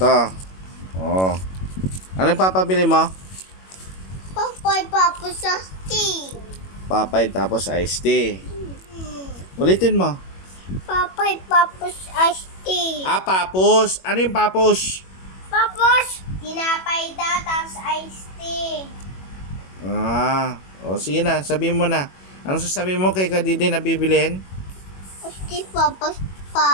Oh. Ano yung papabili mo? Papay, papas, tea. Papay tapos iced tea. Ulitin mo. Papay, papas, tea. Papos. Ano yung papos? Papos! Tinapay daw, tapos iced tea. Sige na, sabihin mo na. Anong sasabihin mo kay Kadidi na bibilin? Iced tea, papos,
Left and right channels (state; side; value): late; right; 21 ms